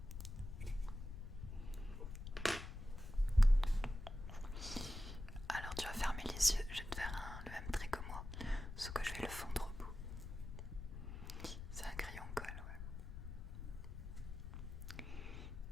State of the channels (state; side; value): noise; left; rumble, 8 dB below the sound